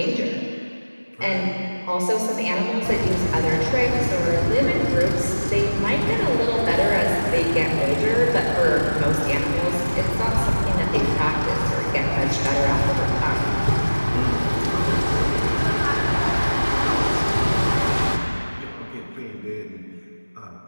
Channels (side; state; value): both; inverted; correlation -1.00